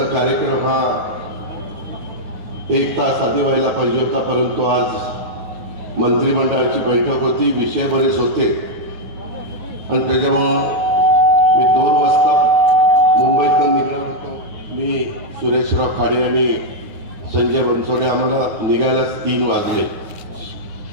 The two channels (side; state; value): left; late; 10 ms